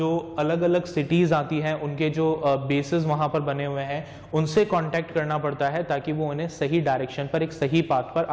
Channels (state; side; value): identical; both; correlation 1.00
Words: अलग अलग सिटीज आती हैं, उनके जो बेसेस वहां पर बने हुए हैं, उनसे कांटेक्ट करना पड़ता है ताकि वो उन्हें सही डायरेक्शन पर, एक सही पाथ पर